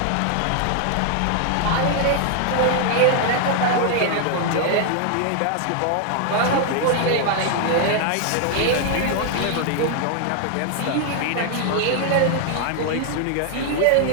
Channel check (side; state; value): both; different; correlation 0.00